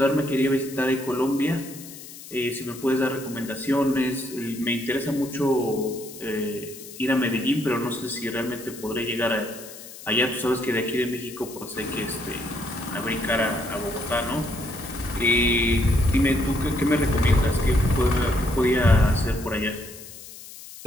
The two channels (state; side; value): noise; left; hiss, 15 dB below the sound